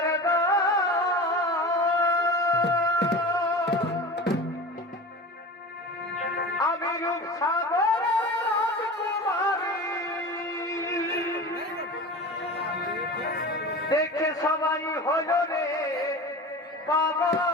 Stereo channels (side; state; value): both; normal; correlation 0.33